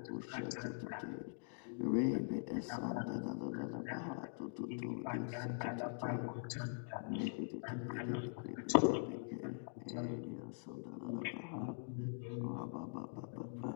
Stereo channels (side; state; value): right; silent; digital silence